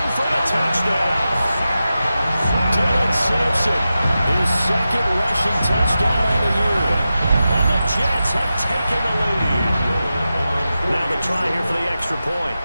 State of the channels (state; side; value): inverted; both; correlation -0.92